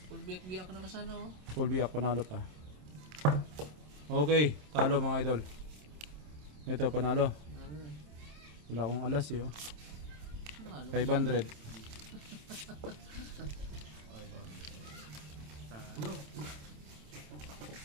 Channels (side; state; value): left; late; 27 ms